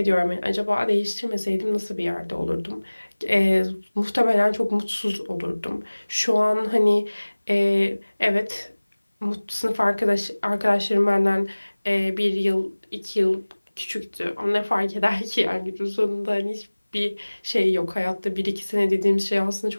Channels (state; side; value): inverted; both; correlation -1.00